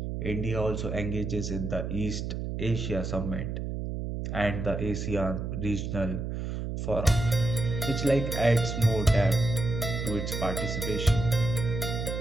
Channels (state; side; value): noise; right; hum, 4 dB below the sound